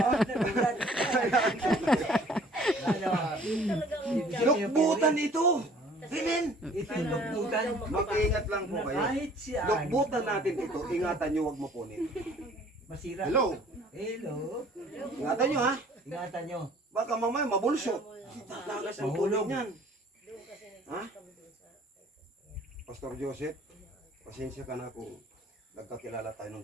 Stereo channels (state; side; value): normal; both; correlation 0.54